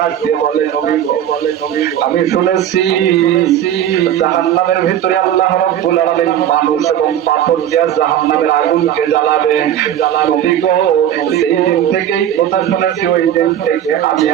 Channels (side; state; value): left; quieter; 10.7 dB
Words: দিয়ে বলে নবী গো, আমি শুনেছি জাহান্নামের ভিতরে আল্লাহ রাব্বুল আলামিন মানুষ এবং পাথর দিয়ে জাহান্নামের আগুনকে জ্বালাবে। নবী গো, সেই দিন থেকেই কথা শুনেছি, ওই দিন থেকে আমি